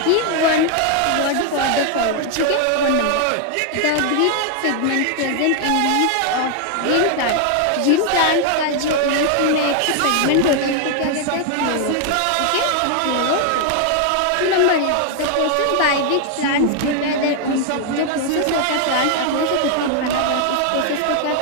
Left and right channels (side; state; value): both; different; correlation 0.00